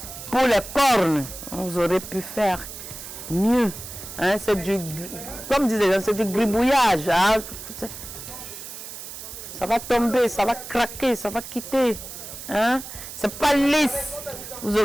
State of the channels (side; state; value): right; noise; hiss, 11 dB below the sound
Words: pour les cornes. Vous aurez pu faire mieux. Hein? C'est du, comme disait, c'est du gribouillage. Hein? Ça va tomber, ça va craquer, ça va quitter. Hein? C'est pas lisse. Vous